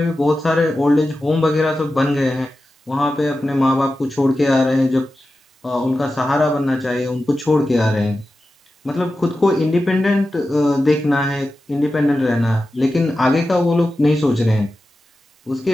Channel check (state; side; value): normal; both; correlation 0.92